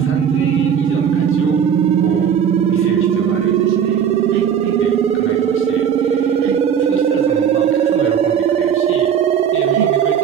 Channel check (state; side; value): quieter; left; 8.2 dB